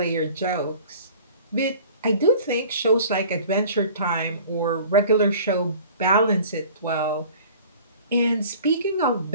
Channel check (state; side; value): inverted; both; correlation -0.46